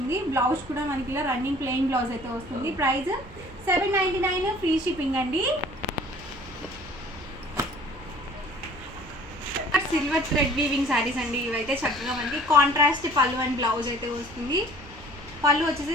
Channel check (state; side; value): noise; right; rumble, 18 dB below the sound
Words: బ్లౌజ్ కూడా మనకి ఇలా రన్నింగ్ ప్లెయిన్ బ్లౌజ్ అయితే వస్తుంది. ప్రైస్ 799, ఫ్రీ షిప్పింగ్ అండి. సిల్వర్ థ్రెడ్ వీవింగ్ శారీస్ అండి. ఇవైతే చక్కగా మనకి కాంట్రాస్ట్ పళ్ళు అండ్ బ్లౌజ్ అయితే వస్తుంది. పళ్ళు వచ్చేసి